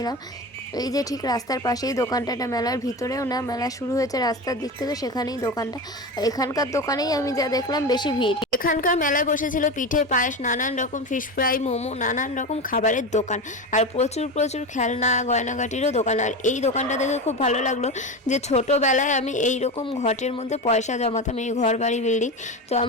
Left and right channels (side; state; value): both; normal; correlation 0.23